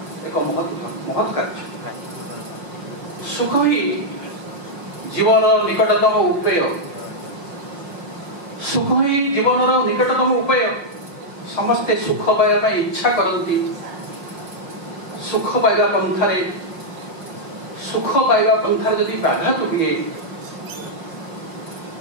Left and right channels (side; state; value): left; late; 5.6 ms